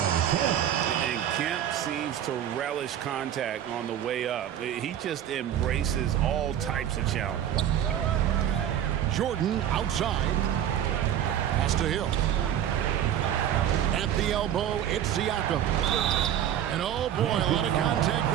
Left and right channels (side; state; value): left; quieter; 10.5 dB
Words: And Kemp seems to relish contact on the way up. He just embraces all types of challenges. Jordan outside. Pass to Hill. At the elbow, it's Siakam. And oh boy, a lot of contact